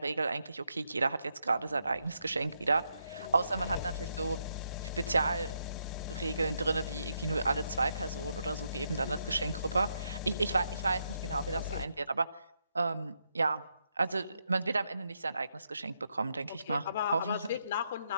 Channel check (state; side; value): inverted; both; correlation -0.80